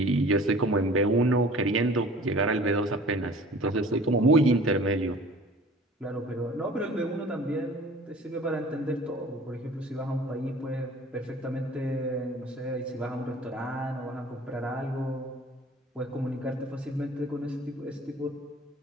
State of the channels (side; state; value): both; normal; correlation 0.46